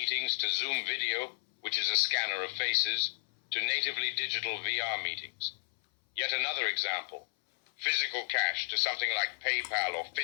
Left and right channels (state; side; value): silent; right; 56 dB below the other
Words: to Zoom video, which is a scanner of faces, to natively digital VR meetings. Yet another example, physical cash to something like PayPal or